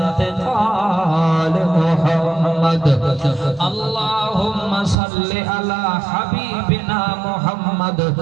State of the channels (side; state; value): left; drops out; at 5.0 s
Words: मुहम्मद अल्लाहुम्मा सल्लि अला हबीबिना मुहम्मद